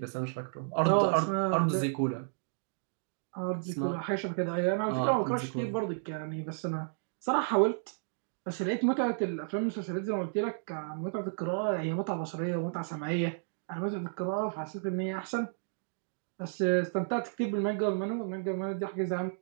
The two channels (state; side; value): silent; left; digital silence